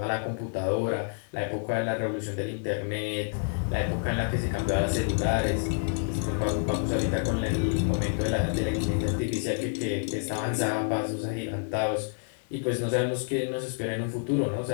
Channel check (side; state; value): right; silent; digital silence